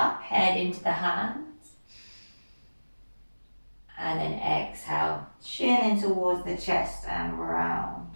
head into the hands. And then exhale, chin in towards the chest and round.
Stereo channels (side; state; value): both; inverted; correlation -1.00